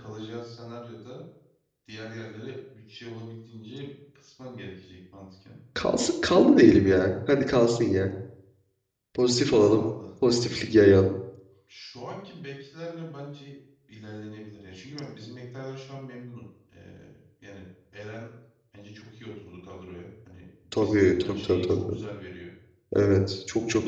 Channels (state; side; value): identical; both; correlation 1.00